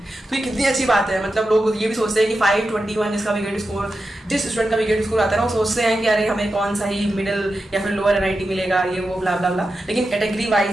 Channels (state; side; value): normal; both; correlation 0.90